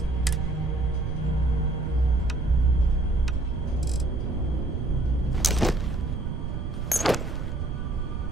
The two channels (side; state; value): right; noise; rumble, 4 dB below the sound